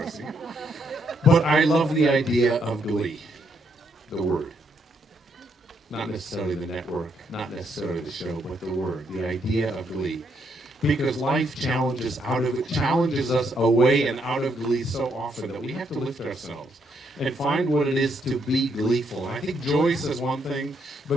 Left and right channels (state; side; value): normal; both; correlation 0.75